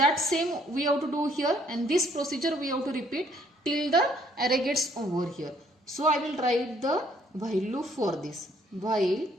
same we have to do here, and this procedure we have to repeat till the array gets over here. So I will write the while loop for this. While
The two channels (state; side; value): normal; both; correlation 0.64